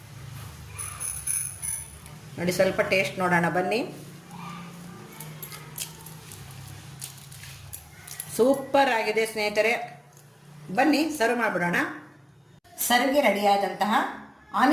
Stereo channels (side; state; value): both; identical; correlation 1.00